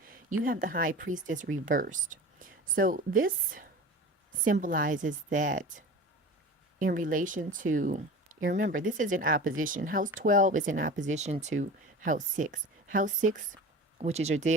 You have the High Priestess reversed. So this symbolizes that in relation to, remember, this is in opposition. House 12 is in opposition to house 6. House 6, which is your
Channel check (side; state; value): both; normal; correlation 0.35